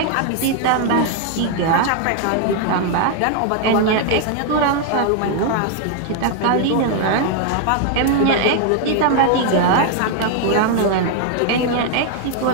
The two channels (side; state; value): both; different; correlation 0.00